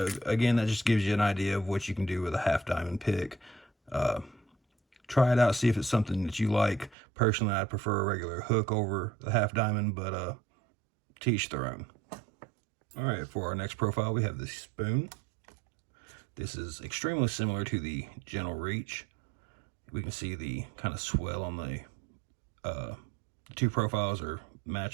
again, that just gives you an idea of what you can do with a half diamond pick. Try it out, see if it's something that you like. Personally, I prefer a regular hook over the half diamond, but to each their own. All right, for our next profile, we have the spoon. This is extremely similar to the gentle reach. We can see the kind of swell on the two profiles or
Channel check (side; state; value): left; drops out; at 7.0 s